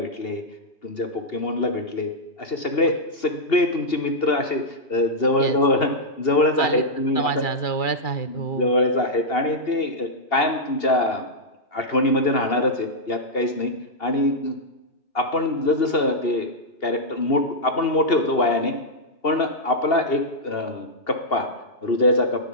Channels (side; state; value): right; late; 2.8 ms